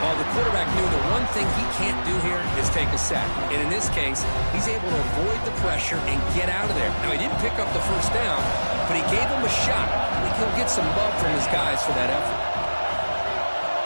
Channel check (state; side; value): inverted; both; correlation -1.00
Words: Well, the quarterback knew the one thing he can't do here is take a sack. And in this case, he's able to avoid the pressure and get out of there. Now, he didn't pick up the first down, but he gave him a shot. I think he'll get some love from his guys for that effort.